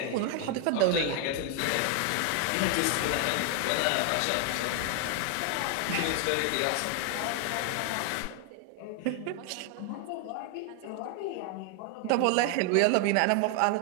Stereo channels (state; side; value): different; both; correlation 0.00